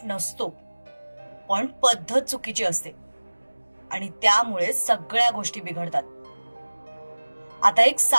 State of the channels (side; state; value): both; inverted; correlation -1.00